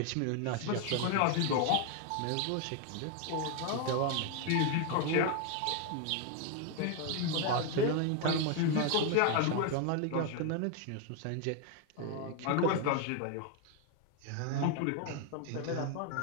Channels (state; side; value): different; both; correlation 0.01